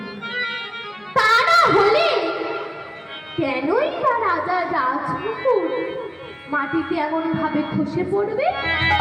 তা না হলে কেনই বা রাজা রাজমুকুট মাটিতে এমন ভাবে খসে পড়বে?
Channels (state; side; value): identical; both; correlation 1.00